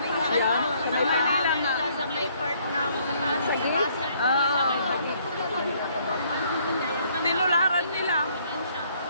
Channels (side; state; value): both; inverted; correlation -0.65